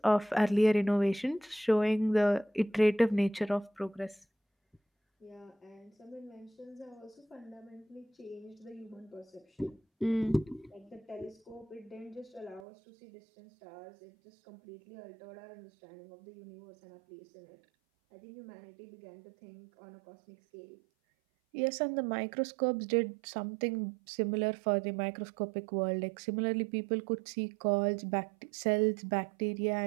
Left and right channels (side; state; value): left; drops out; at 12.7 s